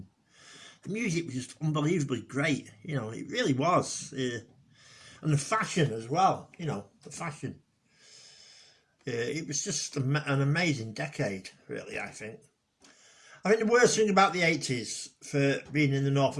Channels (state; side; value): identical; both; correlation 1.00